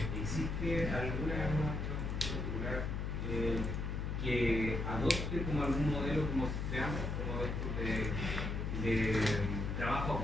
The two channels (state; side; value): noise; left; hum, 2 dB below the sound